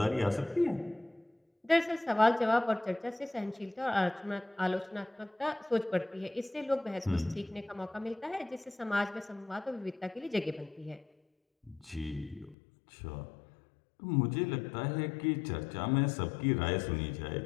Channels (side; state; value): right; drops out; at 12.6 s